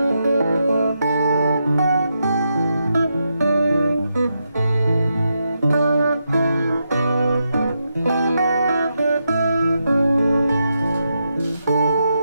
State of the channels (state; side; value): inverted; both; correlation -0.84